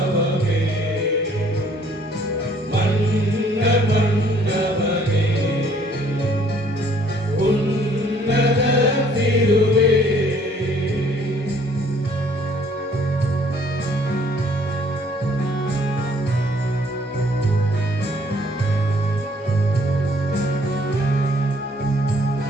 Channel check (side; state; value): both; normal; correlation 0.60